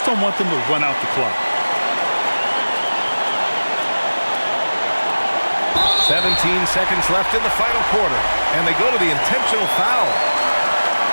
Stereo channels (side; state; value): both; inverted; correlation -1.00